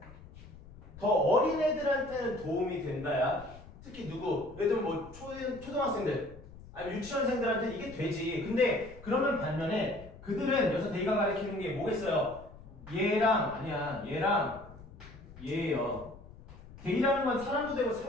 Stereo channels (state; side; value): noise; left; rumble, 18 dB below the sound